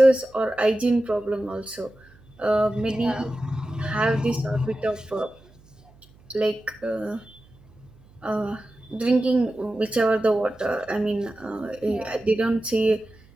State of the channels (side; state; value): right; noise; hum, 27 dB below the sound